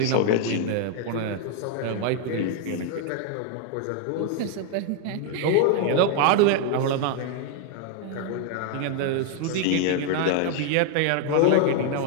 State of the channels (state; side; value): different; both; correlation 0.00